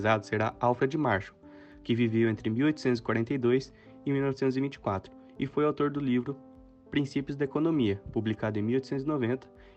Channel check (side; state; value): both; identical; correlation 1.00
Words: será Alfred Marshall, que viveu entre 1842 e 1924 e foi autor do livro Princípios da Economia, publicado em 1890